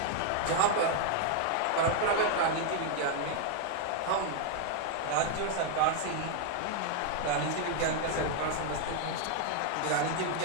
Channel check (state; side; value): different; both; correlation 0.00